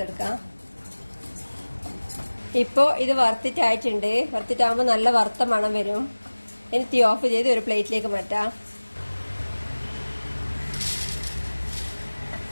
ഇപ്പോൾ ഇത് വറുത്തിട്ടായിട്ടുണ്ട്. വറുത്തിട്ടാകുമ്പോൾ നല്ല വറുത്ത മണം വരും. ഇനി തീ ഓഫ് ചെയ്ത് ഒരു പ്ലേറ്റിലേക്ക് മാറ്റാം.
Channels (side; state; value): both; inverted; correlation -1.00